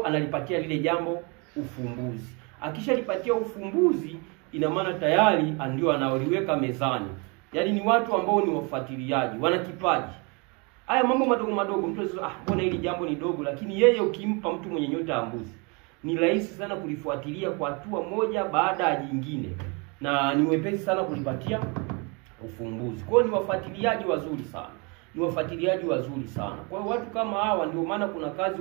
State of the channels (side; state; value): left; quieter; 31.3 dB